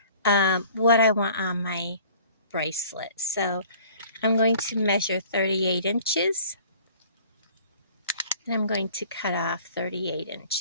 what I want on my bracelet. So I'm going to measure 38 inches. And I'm going to cut off 38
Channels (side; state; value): both; inverted; correlation -0.51